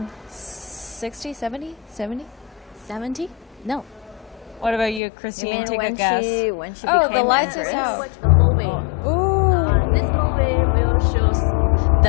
60, 70? 70? No. What about you, You Christine? mean Take a when guess. when she Oh, became the lights is empress? out. Watch a movie. Ooh. This movie will show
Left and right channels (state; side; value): drops out; right; at 5.0 s